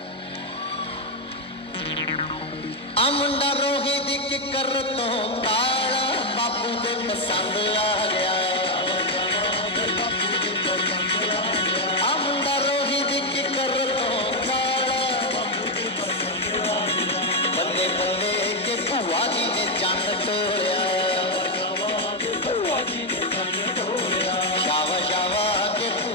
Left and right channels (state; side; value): normal; both; correlation 0.03